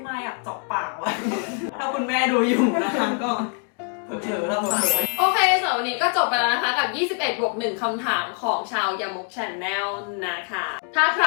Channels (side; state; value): right; quieter; 39.5 dB